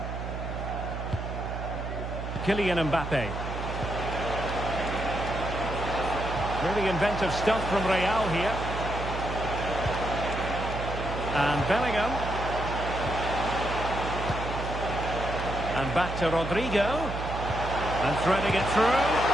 Kylian Mbappe. Really inventive stuff from Real here. And Bellingham. And back to Rodrigo. And threading it through.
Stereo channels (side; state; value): right; noise; hum, 6 dB below the sound